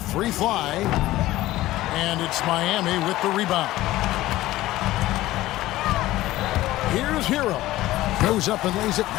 fly. And it's Miami with the rebound. Here's Hero. Goes up and lays it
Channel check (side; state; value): right; quieter; 16.3 dB